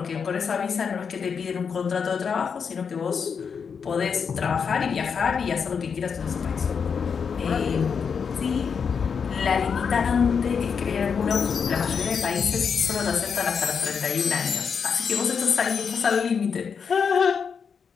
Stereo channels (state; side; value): quieter; right; 6.3 dB